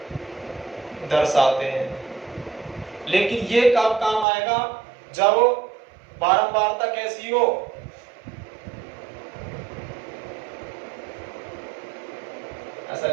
दर्शाते हैं, लेकिन ये कब काम आएगा, जब बारंबारता कैसी हो, ऐसा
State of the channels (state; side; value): drops out; left; at 4.2 s